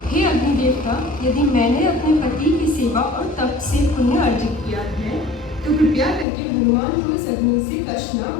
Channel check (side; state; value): right; drops out; at 6.2 s